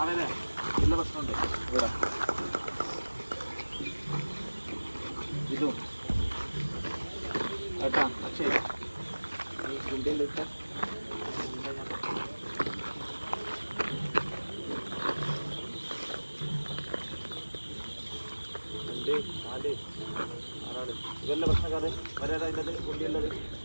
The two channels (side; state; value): both; inverted; correlation -1.00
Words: അവനെ നല്ല പ്രശ്നമുണ്ട് ഇവിടെ ഇതും കേട്ടാ പക്ഷേ ഈ ഇന്ത്യയിലേക്ക് ഇതെല്ലാം പ്രശ്നക്കാരെ വരാതെ കുണ്ടിയുള്ളത്